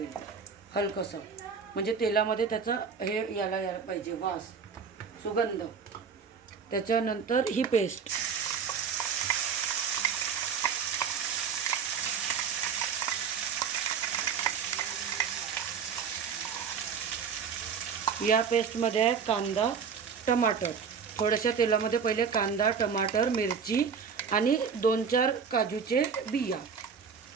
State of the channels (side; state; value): left; quieter; 6.3 dB